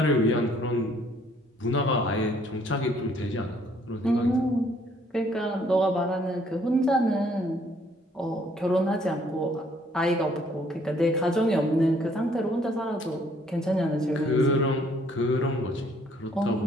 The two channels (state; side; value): normal; both; correlation 0.63